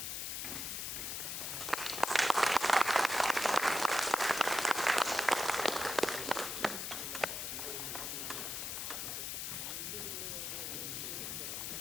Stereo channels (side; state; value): left; noise; hiss, 4 dB below the sound